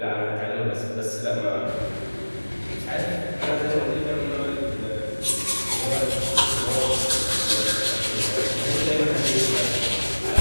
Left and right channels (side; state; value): both; inverted; correlation -1.00